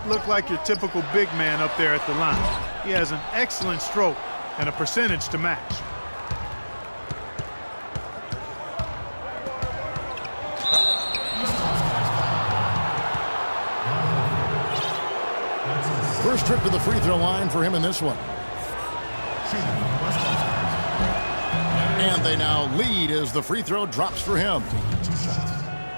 look like your typical big man up there at the line. He has an excellent stroke and a percentage to match. First trip to the free throw line for him in this one. And they now lead as the free throw drops for him.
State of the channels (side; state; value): both; inverted; correlation -1.00